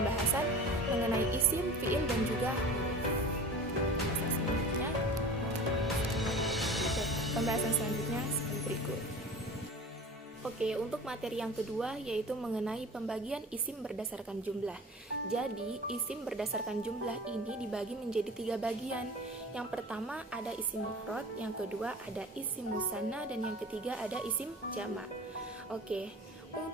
mengenai isim, fiil, dan juga pembahasan selanjutnya seperti berikut. Oke, untuk materi yang kedua yaitu mengenai pembagian isim berdasarkan jumlah. Jadi, isim berdasarkan jumlah ini dibagi menjadi 3 bagian. Yang pertama ada isim mufrad, yang kedua ada isim musanna, dan yang ketiga ada isim jamak. Oke,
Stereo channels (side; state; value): both; normal; correlation 0.38